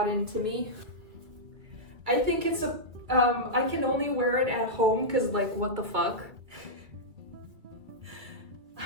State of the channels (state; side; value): late; left; 2.3 ms